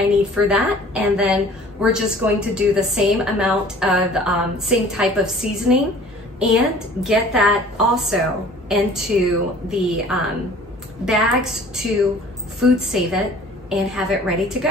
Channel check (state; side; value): normal; both; correlation 0.49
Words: need for that, and then we're just going to do the same amount of, same type of seasoning and get that also into the bags to food save it and have it ready to